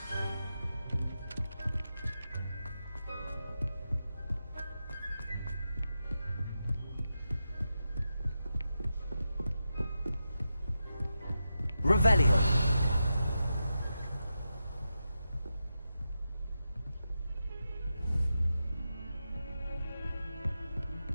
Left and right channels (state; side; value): inverted; both; correlation -0.89